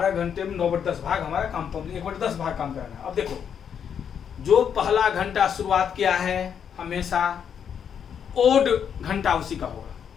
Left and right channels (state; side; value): quieter; right; 7.9 dB